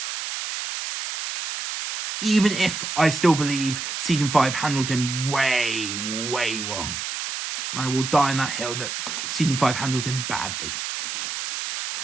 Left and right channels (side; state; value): right; noise; hiss, 5 dB below the sound